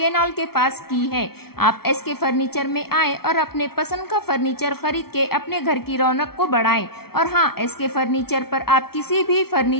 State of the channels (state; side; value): late; right; 0.95 ms